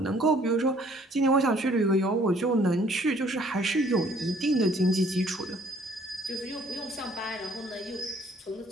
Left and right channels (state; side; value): normal; both; correlation 0.60